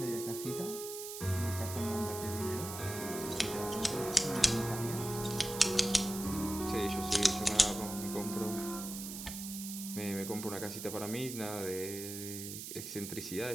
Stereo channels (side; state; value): right; noise; hiss, 8 dB below the sound